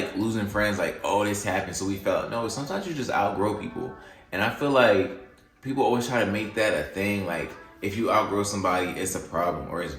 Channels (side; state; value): both; identical; correlation 1.00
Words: losing friends, like, oh, this happened, so we felt. No, sometimes you just outgrow people. And I feel like people always try to make that a thing. Like, if you outgrow somebody, it's a problem or it's